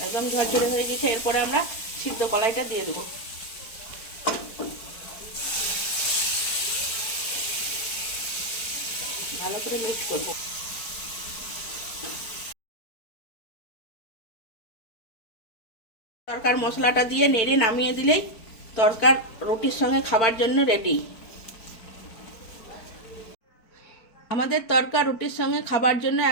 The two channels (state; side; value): late; right; 4.5 ms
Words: একদম ঝরঝরে হয়ে গেছে। এরপরে আমরা সিদ্ধ কলাইটা দিয়ে দেবো। ভালো করে মিক্স করব। তরকার মশলাটা দিয়ে নেড়ে নামিয়ে দিলেই তরকার রুটির সঙ্গে খাবার জন্য রেডি। আমাদের তরকা রুটির সঙ্গে খাবার জন্য